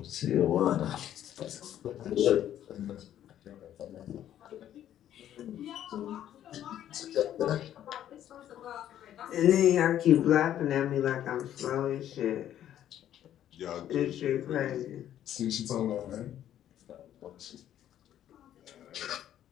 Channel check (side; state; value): right; quieter; 11.3 dB